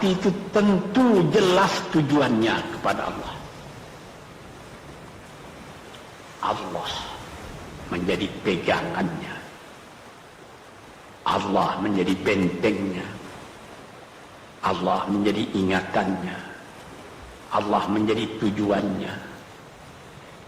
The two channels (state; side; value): identical; both; correlation 1.00